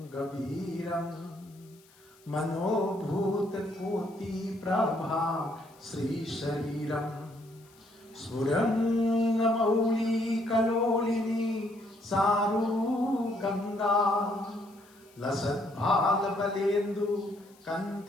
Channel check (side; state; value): left; noise; hiss, 29 dB below the sound